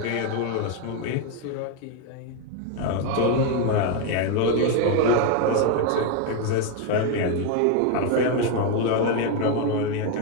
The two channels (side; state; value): both; different; correlation 0.02